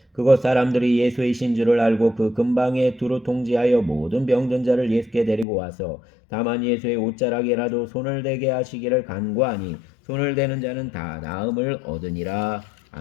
그곳 사람들이 예수이신 줄을 알고 그 근방에 두루 통지하여 모든 병든 자를 예수께 데리고 와서 다만 예수의 옷자락에라도 손을 대게 하시기를 간구하니 손을 대는 자는 다 나음을 얻으니라.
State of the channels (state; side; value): drops out; right; at 5.5 s